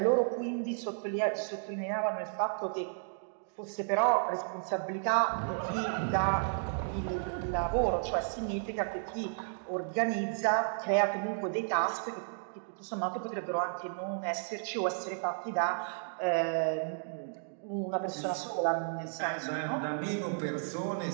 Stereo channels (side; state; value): left; silent; digital silence